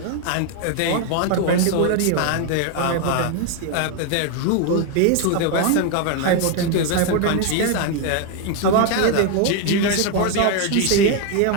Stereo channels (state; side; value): different; both; correlation 0.01